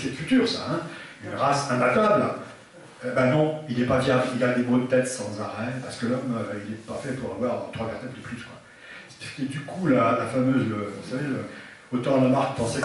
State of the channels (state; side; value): identical; both; correlation 1.00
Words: futur, ça, hein, une race imbattable. Ben non, il n'est pas viable, il a des maux de tête sans arrêt, parce que l'homme, il n'est pas fait pour avoir 3 vertèbres de plus. Quoi. Et du coup, la fameuse, vous savez, autant Lamarck pensait